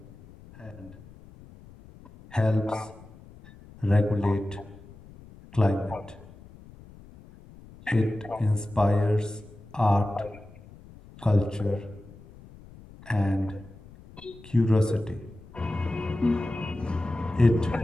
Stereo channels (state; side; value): noise; left; rumble, 21 dB below the sound